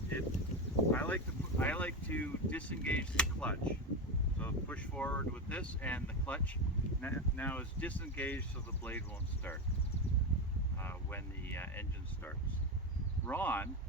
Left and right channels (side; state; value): both; normal; correlation 0.16